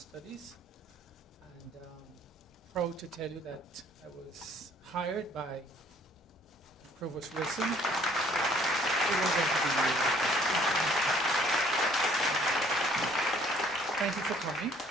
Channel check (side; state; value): both; normal; correlation 0.59